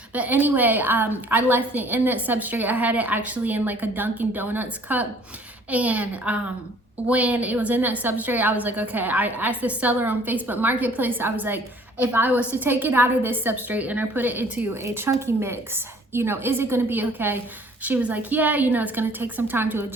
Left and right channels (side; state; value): both; normal; correlation 0.55